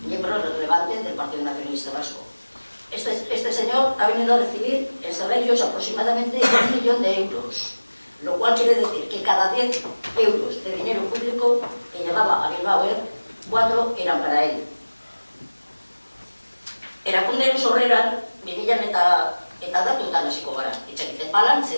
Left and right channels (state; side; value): inverted; both; correlation -1.00